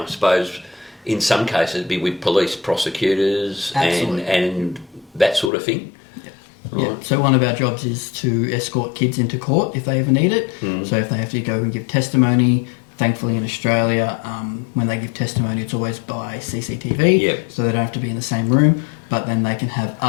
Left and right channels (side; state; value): right; drops out; at 5.5 s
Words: suppose in some cases be with police, prosecutors and that sort of thing? So one of our jobs is to escort kids into court if they ever need it. So if they have to go and give testimony, thankfully in Australia, when they give testimony it's always by CCTV, so they don't have to be in the same room, but then they can have